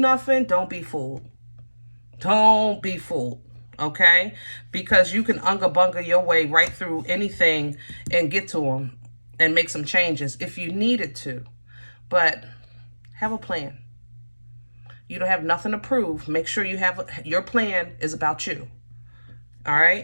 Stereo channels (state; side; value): inverted; both; correlation -1.00